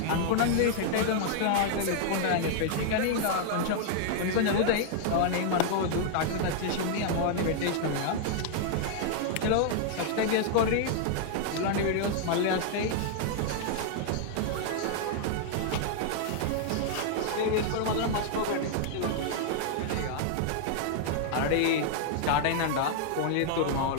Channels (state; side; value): different; both; correlation 0.00